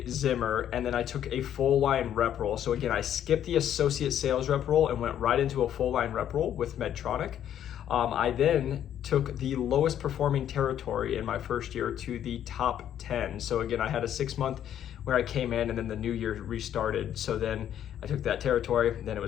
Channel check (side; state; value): right; quieter; 10.4 dB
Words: Zimmer, and then I took a full line rep role. So again, I skipped the associate sales rep role and went right into a full line rep role with Medtronic. I then took the lowest performing territory in my first year to the top 10. So again, I had a 6-month where I came in and then the new year restarted. So then I took that territory, then it